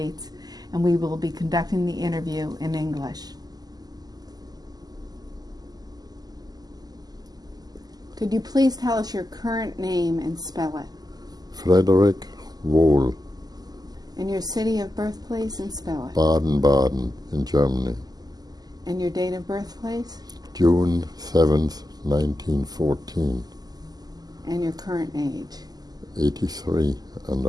and we will be conducting the interview in English. Could you please tell us your current name and spell it? Frederick Wall. And your city of birthplace and spell it? Baden Baden in Germany. And your date of birthplace? June 7th, 1914. And your current age? 83 and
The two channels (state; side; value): late; left; 0.19 ms